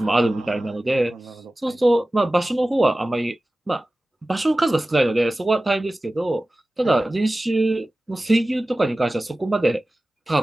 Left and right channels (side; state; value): both; normal; correlation 0.96